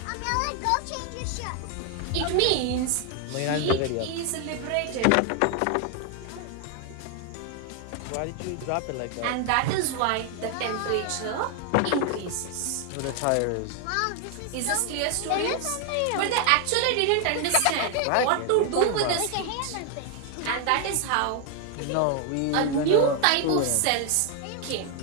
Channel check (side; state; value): both; different; correlation 0.01